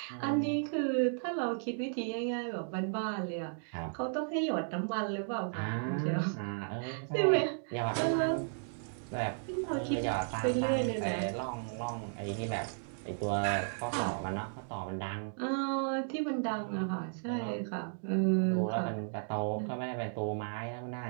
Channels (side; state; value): left; silent; digital silence